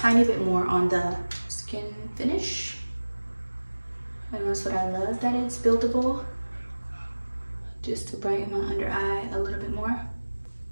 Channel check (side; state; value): both; inverted; correlation -1.00